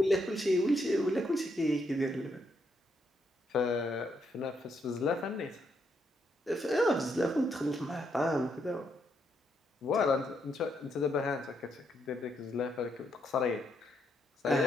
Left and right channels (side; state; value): both; normal; correlation 0.77